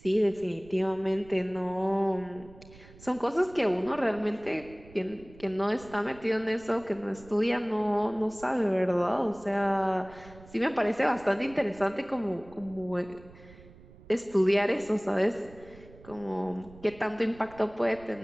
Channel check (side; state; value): right; noise; rumble, 21 dB below the sound